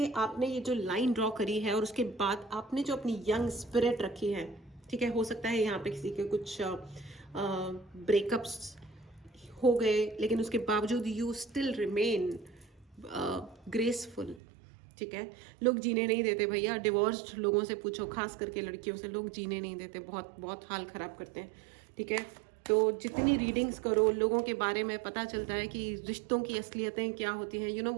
आपने ये जो लाइन ड्रॉ करी है और उसके बाद आपने जो अपनी यंग स्पिरिट रखी है, ठीक है। हो सकता है यहाँ पे किसी के कुछ ब्रेकअप्स हो गए, लेकिन उसके बावजूद यू स्टिल रिमेन ग्रेसफुल, ठीक है। लोग जीने नहीं देते भैया, डिवोर्स्ड लोगों से पूछो, खास करके लड़कियों से, लोग जीने नहीं देते, बहुत बहुत हाल ख़राब करते हैं, ठीक है। तो जितनी रीडिंग्स करो, लोगों के बारे में पता चलता है कि रिश्तों की असलियतें क्या होती हैं। यू नो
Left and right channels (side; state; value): left; drops out; at 14.4 s